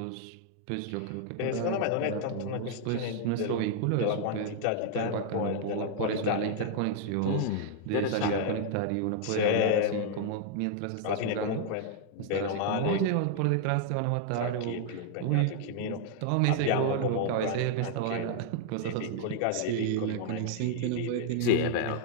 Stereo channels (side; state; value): both; different; correlation 0.00